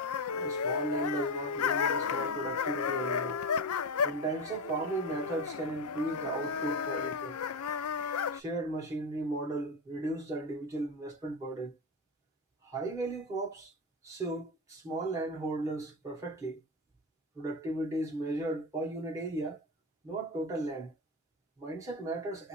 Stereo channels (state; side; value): normal; both; correlation 0.16